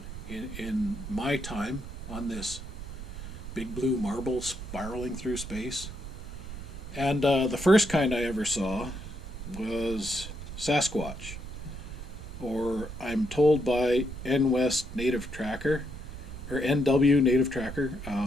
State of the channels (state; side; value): noise; right; rumble, 10 dB below the sound